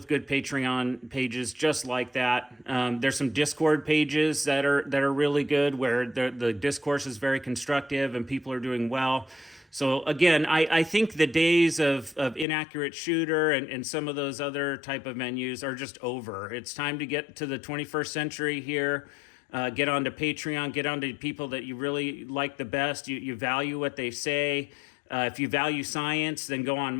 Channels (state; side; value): drops out; right; at 12.5 s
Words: good Patreon pages just like that. There's some Discord pages that are really good, where the discourse is very constructive and people are doing well. So again, I think the days of Inaccurate Shooter and some of those other type of menus are just over. It's time to get to the 21st century here. Get onto Patreon, get onto people that you really like the best. You value what they say. If you value science, then go on